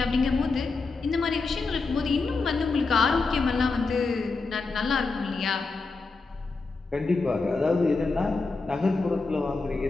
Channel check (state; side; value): quieter; right; 4.0 dB